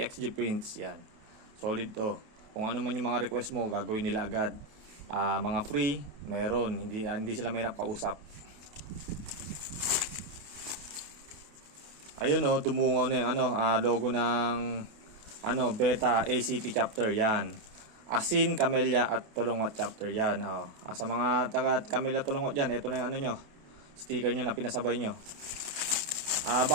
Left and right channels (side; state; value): left; late; 28 ms